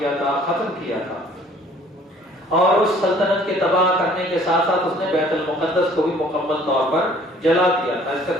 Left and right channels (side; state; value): both; normal; correlation 0.55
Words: تھا، ختم کیا تھا، اور اس سلطنت کے تباہ کرنے کے ساتھ ساتھ اس نے بیت المقدس کو بھی مکمل طور پر جلا دیا تھا۔ اس کا